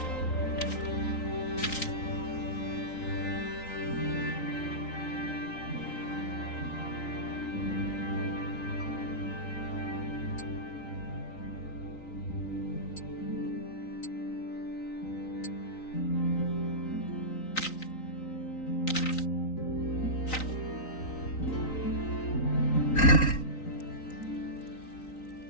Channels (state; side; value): late; right; 3.9 ms